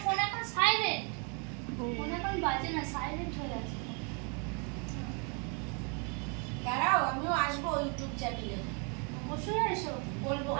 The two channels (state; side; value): quieter; left; 36.3 dB